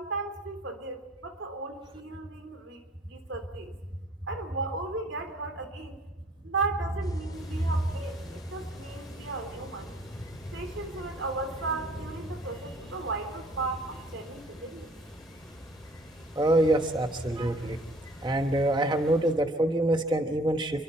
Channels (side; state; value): both; normal; correlation 0.55